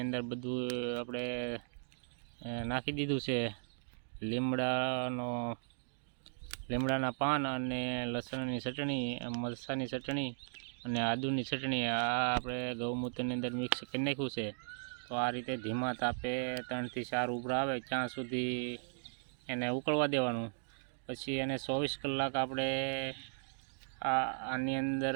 અંદર બધું આપણે નાખી દીધું છે. લીમડાના પાન અને લસણની ચટણી, મરચાંની ચટણી અને આદુની ચટણી આ આપણે ગૌમૂત્રની અંદર મિક્સ કરી નાખ્યું છે. તો આ રીતે ધીમા તાપે 3 થી 4 ઉભરા આવે ત્યાં સુધી એને ઉકળવા દેવાનું. પછી એને 24 કલાક આપણે આની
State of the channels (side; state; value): left; silent; digital silence